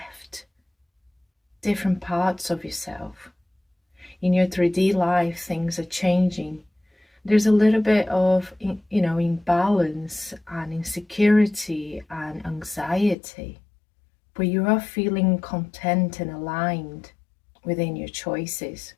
different parts of yourself. In your 3D life, things are changing. There's a little bit of, imbalance and insecurity and anxiety, but you are feeling content and aligned within your choices,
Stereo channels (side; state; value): right; drops out; at 13.2 s